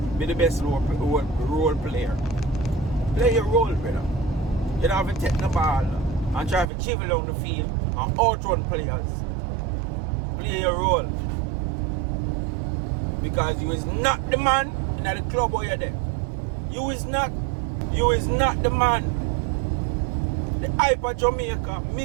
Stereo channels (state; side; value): drops out; left; at 6.7 s